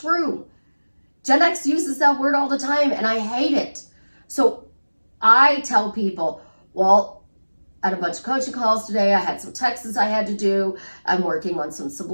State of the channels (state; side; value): inverted; both; correlation -1.00